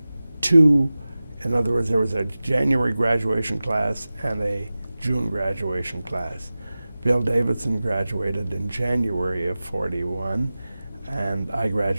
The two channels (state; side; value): inverted; both; correlation -0.97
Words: two, in other words, there was a January graduation class and a June graduation class. Bill Davidson graduated in January of '41, and I